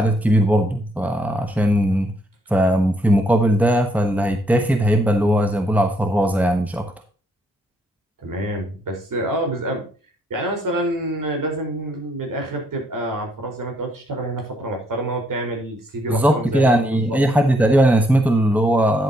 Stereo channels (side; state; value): both; normal; correlation 0.72